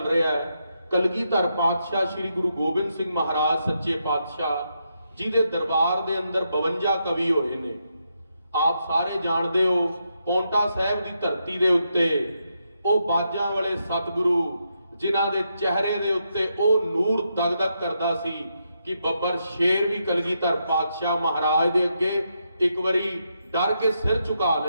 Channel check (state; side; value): inverted; both; correlation -0.81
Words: ਰਿਹਾ ਹੈ ਕਲਗੀਧਰ ਪਾਤਸ਼ਾਹ ਸ਼੍ਰੀ ਗੁਰੂ ਗੋਬਿੰਦ ਸਿੰਘ ਮਹਾਰਾਜ ਸੱਚੇ ਪਾਤਸ਼ਾਹ ਜੀ ਦੇ ਦਰਬਾਰ ਦੇ ਅੰਦਰ 52 ਕਵੀ ਹੋਏ ਨੇ। ਆਪ ਸਾਰੇ ਜਾਣਦੇ ਹੋ, ਪੌਂਟਾ ਸਾਹਿਬ ਦੀ ਧਰਤੀ ਦੇ ਉੱਤੇ ਉਹ ਬਾਜਾਂ ਵਾਲੇ ਸਤਿਗੁਰੂ ਜਿਨ੍ਹਾਂ ਦੇ ਚਿਹਰੇ ਦੇ ਉੱਤੇ ਉਹ ਨੂਰ ਦਗਦਗ ਕਰਦਾ ਸੀ ਕਿ ਬੱਬਰ ਸ਼ੇਰ ਵੀ ਕਲਗੀਧਰ ਪਾਤਸ਼ਾਹ ਮਹਾਰਾਜ ਦੇ ਅੱਗੇ ਇੱਕ ਵਾਰੀ ਡਰ ਕੇ ਸਿਰ ਝੁਕਾ